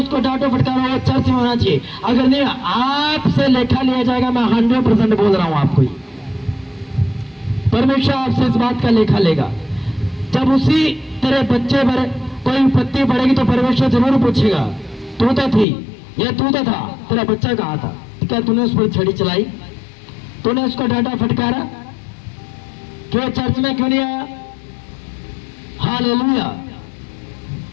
डांटो फटकारो, वो चर्च में होना चाहिए। अगर नहीं आपसे लेखा लिया जाएगा। मैं 100% बोल रहा हूं आपको, परमेश्वर आपसे इस बात का लेखा लेगा। जब उसी तेरे बच्चे पर कोई विपत्ति पड़ेगी तो परमेश्वर जरूर पूछेगा तू तो थी, या तू तो था, तेरा बच्चा कहाँ था, क्या तूने उस पर छड़ी चलाई, तूने उसको डांटा फटकारा, क्यों चर्च में क्यों नहीं आया। हालेलुया।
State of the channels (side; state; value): right; drops out; at 15.7 s